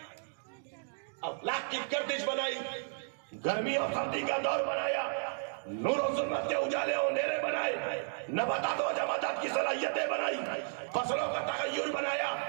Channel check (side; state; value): left; silent; digital silence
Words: अफलाक की गर्दिश बनाई, गर्मी और सर्दी का दौर बनाया, नूर और जुल्मत के उजाले और अंधेरे बनाए, नबातात और जमातात की सलाहियतें बनाई, फसलों का तगय्युर बनाया,